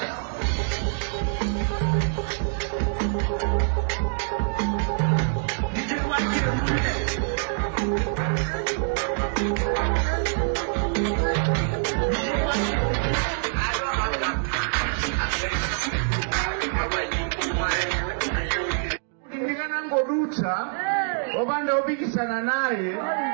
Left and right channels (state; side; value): silent; left; digital silence